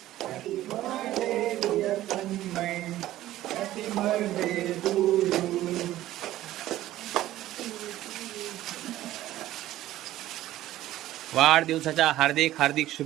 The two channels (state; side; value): quieter; left; 14.5 dB